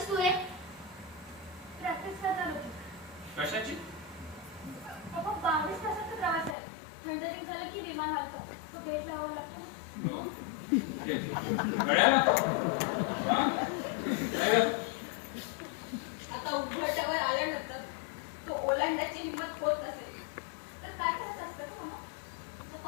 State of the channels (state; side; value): drops out; right; at 6.6 s